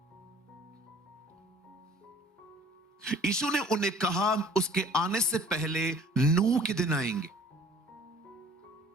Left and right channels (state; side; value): normal; both; correlation 0.50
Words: यीशु ने उन्हें कहा, उसके आने से पहले नूह के दिन आएंगे।